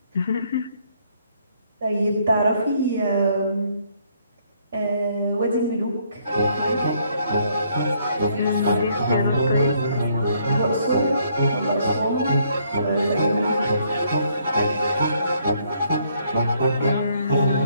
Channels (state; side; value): inverted; both; correlation -0.68